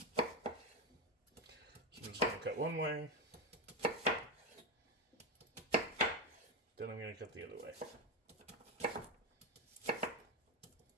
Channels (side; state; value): both; normal; correlation 0.11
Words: I'm just going to cut one way. Then I'm going to cut the other way.